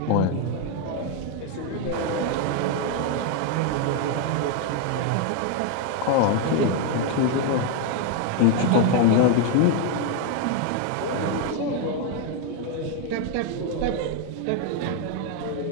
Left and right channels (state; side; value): different; both; correlation 0.01